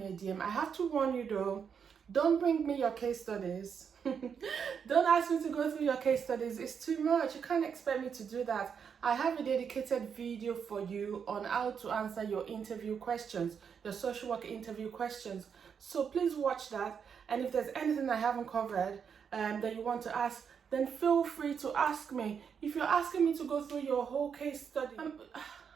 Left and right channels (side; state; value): left; quieter; 7.0 dB